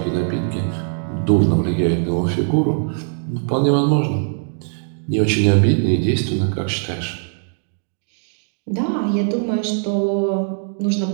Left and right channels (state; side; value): silent; left; digital silence